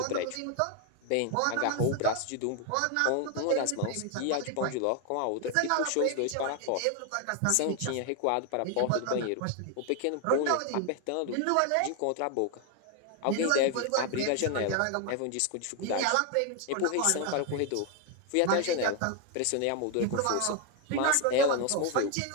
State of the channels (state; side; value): different; both; correlation 0.01